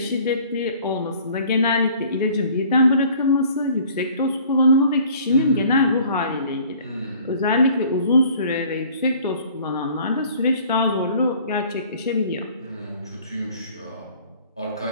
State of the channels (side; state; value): both; inverted; correlation -0.52